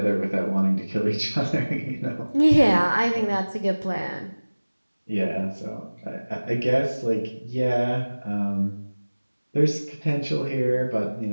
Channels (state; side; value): inverted; both; correlation -1.00